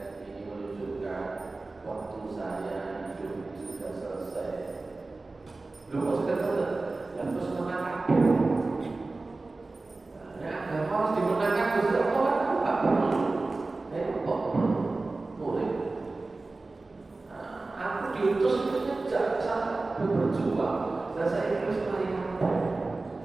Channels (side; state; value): left; quieter; 3.4 dB